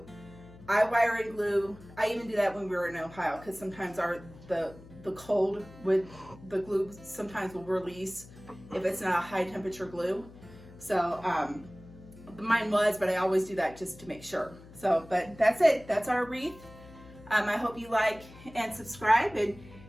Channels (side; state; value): left; noise; hum, 20 dB below the sound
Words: I wire and glue. I even do that when we were in Ohio because sometimes the cold with the glue sometimes will release if it's not a high temperature glue. So mine was, but I always do that just to make sure. So, but that's it. That's our wreath. I hope you like and subscribe, and